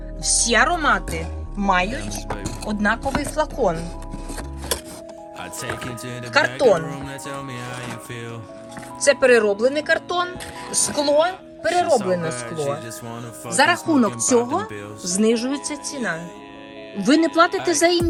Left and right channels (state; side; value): identical; both; correlation 1.00